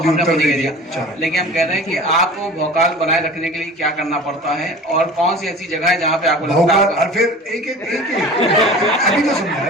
ही उत्तर दे दिया, लेकिन हम कह रहे हैं कि आपको भौकाल बनाए रखने के लिए क्या करना पड़ता है, और कौन सी ऐसी जगह है जहाँ पे आपको लगता है? और फिर एक एक अभी तो समझाया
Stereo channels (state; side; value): normal; both; correlation 0.40